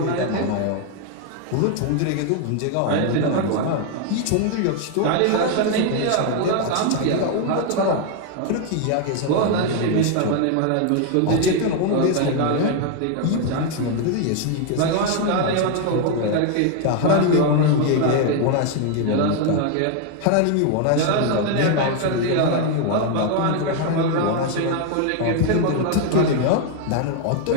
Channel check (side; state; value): both; different; correlation 0.01